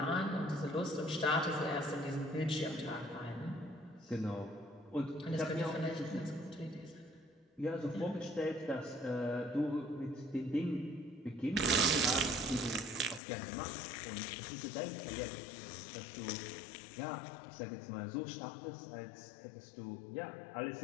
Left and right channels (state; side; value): drops out; right; at 13.2 s